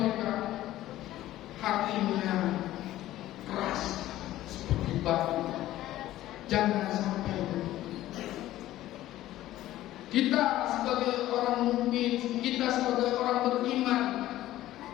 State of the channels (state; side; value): quieter; right; 14.6 dB